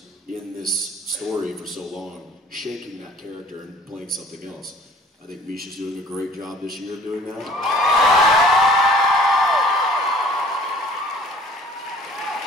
in this story for so long, shaking that character and playing something else. I think Misha's doing a great job this year of doing that.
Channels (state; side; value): normal; both; correlation 0.52